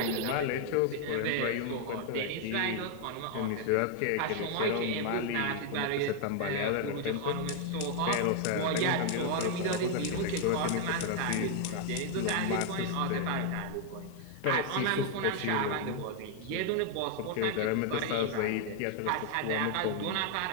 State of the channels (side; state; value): both; different; correlation 0.00